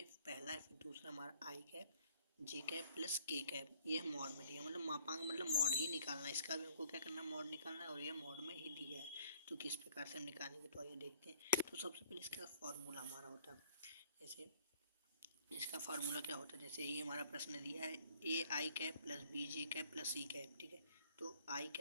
पहला है, फिर दूसरा हमारा आई कैप जे कैप प्लस के कैप। ये मॉड में दिया, मतलब मापांक मतलब मॉड ही निकालना है। इसका भी हमको क्या करना है, मॉड निकालना है, और ये मॉड में ही दिया है। तो किस प्रकार से हम निकालेंगे, तो आइए देखते हैं। तो सबसे पहले इसका फॉर्मूला हमारा होता है, जैसे इसका फार्मूला क्या होता है। जैसे ये हमारा प्रश्न दिया है, A I cap plus B J cap plus C cap, ठीक है। तो आई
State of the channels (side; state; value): both; inverted; correlation -0.59